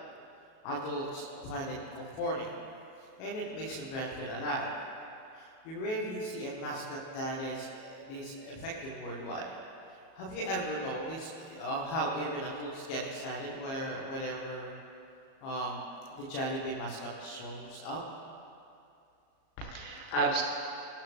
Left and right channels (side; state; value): right; late; 37 ms